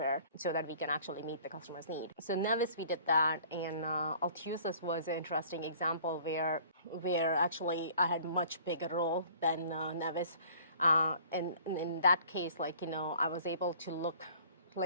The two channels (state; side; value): inverted; both; correlation -0.51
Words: so that we can actually meet the customer's need. So Nevis, we did that, and Altusis was an interesting example where actually I had much bigger role than Nevis. And in that case, I was able